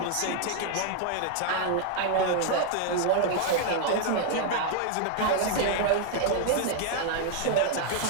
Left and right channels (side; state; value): both; different; correlation 0.00